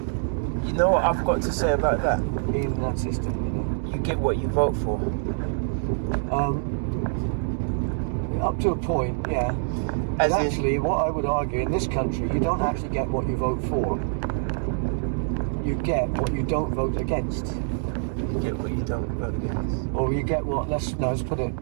You know what I've got to say about that? In that system, you get what you vote for. Up to a point, yeah. But actually, what I would argue, in this country, you don't actually get what you vote for. You get what you don't vote against. You get what you don't vote against. Or you get what? Let's put it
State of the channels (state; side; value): silent; left; digital silence